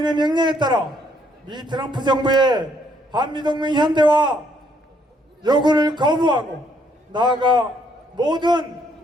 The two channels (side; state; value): both; normal; correlation 0.69